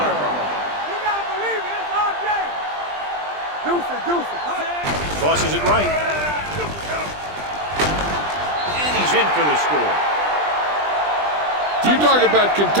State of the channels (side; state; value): left; late; 20 ms